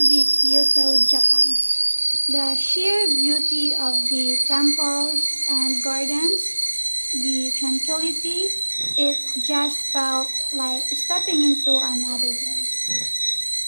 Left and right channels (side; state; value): both; inverted; correlation -1.00